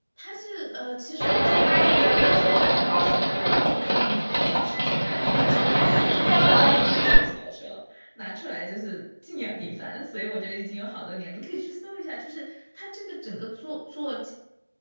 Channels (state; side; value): inverted; both; correlation -1.00